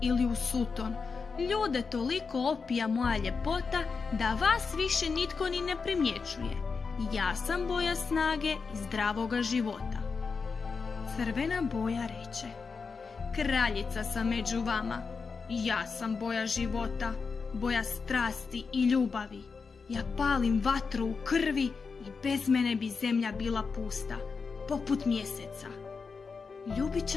ili u suton, ljude toliko opija moja ljepota da vas više nitko ni ne primjećuje. Ja sam boja snage i zdravoga života. Crvena boja reče: kraljica sam među vama. Ja sam boja života, boja strasti i ljubavi. Ja palim vatru u krvi i bez mene bi zemlja bila pusta, poput mjeseca.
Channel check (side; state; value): right; quieter; 5.0 dB